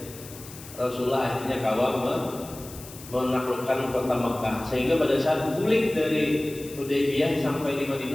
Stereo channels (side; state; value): left; noise; hiss, 16 dB below the sound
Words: Rasulullah akhirnya menaklukkan kota Makkah, sehingga pada saat balik dari Hudaybiyah sampai di